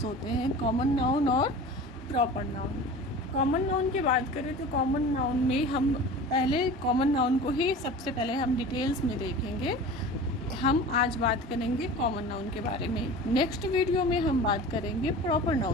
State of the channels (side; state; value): both; normal; correlation 0.37